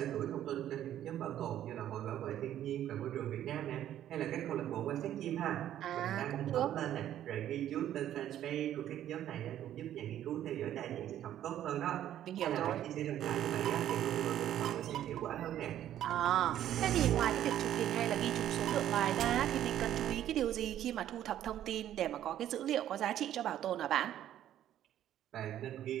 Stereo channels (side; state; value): left; quieter; 11.6 dB